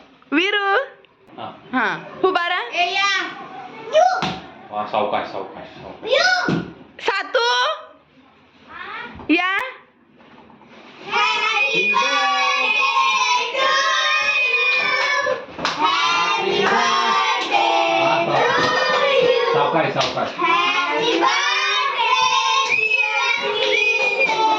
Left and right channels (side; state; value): both; identical; correlation 1.00